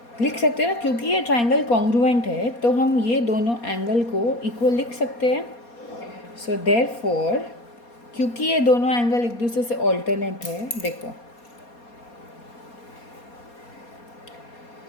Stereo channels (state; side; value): late; right; 4.2 ms